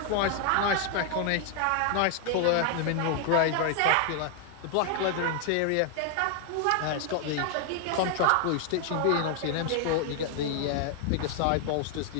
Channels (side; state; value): both; different; correlation 0.00